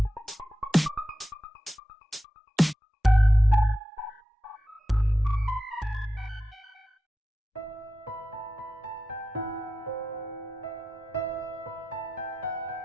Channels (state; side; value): normal; both; correlation 0.91